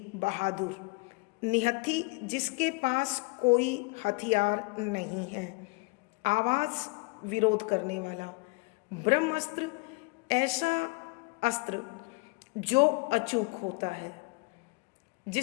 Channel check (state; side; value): quieter; right; 27.8 dB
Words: बहादुर, निहत्थी जिसके पास कोई हथियार नहीं है, आवाज, विरोध करने वाला। ब्रह्मास्त्र, ऐसा अस्त्र जो अचूक होता है,